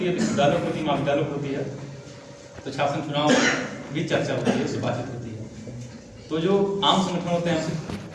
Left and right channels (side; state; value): both; identical; correlation 1.00